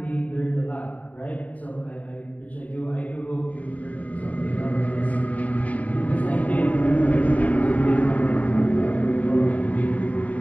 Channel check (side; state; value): right; late; 0.070 ms